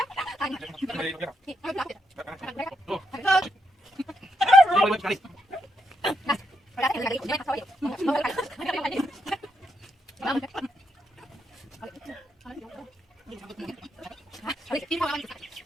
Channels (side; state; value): both; normal; correlation 0.81